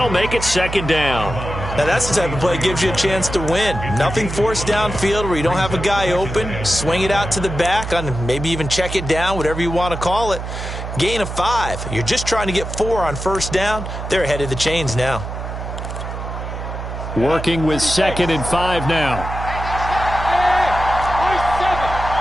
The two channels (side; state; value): right; noise; hum, 7 dB below the sound